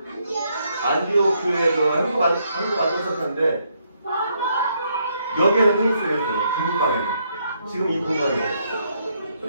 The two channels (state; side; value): inverted; both; correlation -0.74